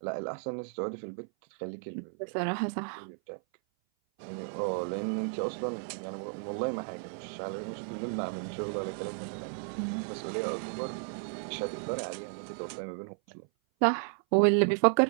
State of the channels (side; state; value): left; silent; 56 dB below the other